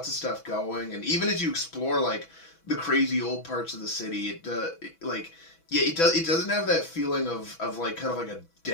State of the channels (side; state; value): right; late; 6.1 ms